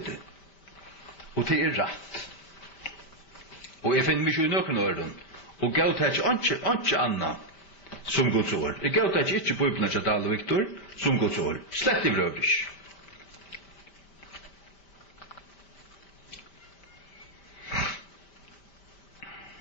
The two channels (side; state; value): right; late; 5.1 ms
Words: Og det rett. Og jeg finner mye i nøkken åren, og gav det ikke annet som Guds år. Jeg gav det ikke Bibelen til Dahl og Viktor som Guds år. Slett i vrøvrig.